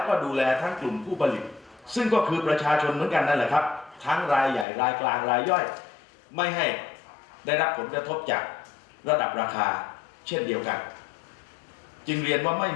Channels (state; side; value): drops out; right; at 4.7 s